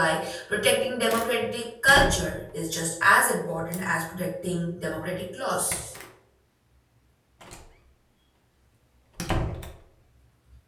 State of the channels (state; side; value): identical; both; correlation 1.00